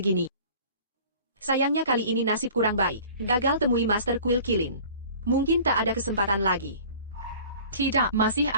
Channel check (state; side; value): inverted; both; correlation -0.46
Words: Sayangnya kali ini nasib kurang baik, gagal temui Master Kuil Kilin. Mungkin tak ada kesempatan lagi. Tidak, masih